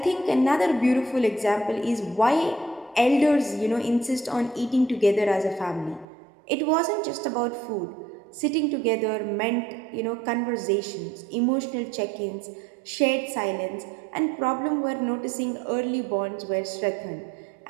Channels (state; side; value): drops out; left; at 6.1 s